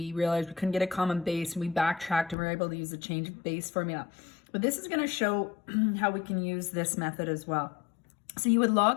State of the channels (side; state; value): right; drops out; at 2.4 s